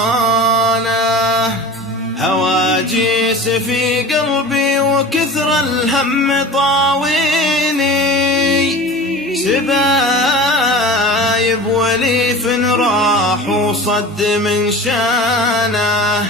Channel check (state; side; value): normal; both; correlation 0.36